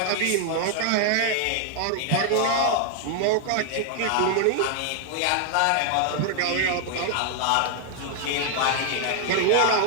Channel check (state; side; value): different; both; correlation 0.00